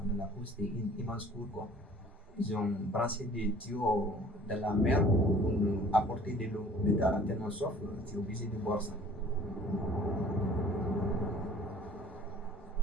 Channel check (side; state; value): both; normal; correlation 0.50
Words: on a la cour, c'était une immense cour, quoi. Ils ont branché des tuyaux dans la mer pour nous apporter de l'eau. Mais t'as tellement soif, tu es obligé de boire ça.